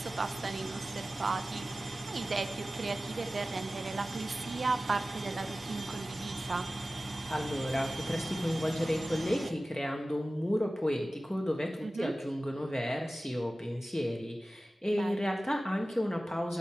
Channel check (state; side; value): normal; both; correlation 0.96